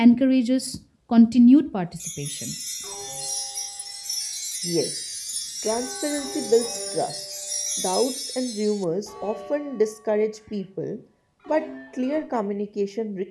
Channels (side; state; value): both; identical; correlation 1.00